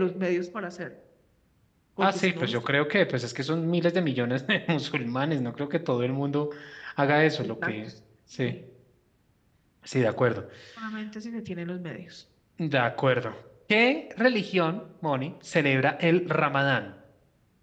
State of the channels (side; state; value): both; identical; correlation 1.00